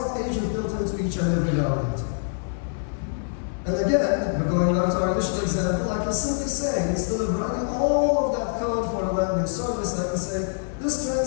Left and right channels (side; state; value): right; silent; digital silence